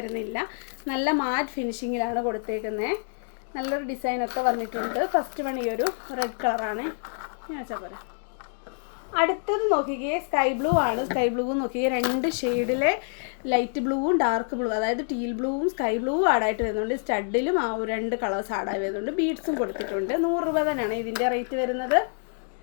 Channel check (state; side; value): silent; right; digital silence